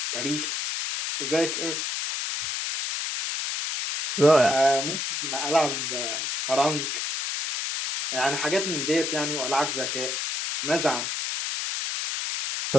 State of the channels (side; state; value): left; noise; hiss, 2 dB below the sound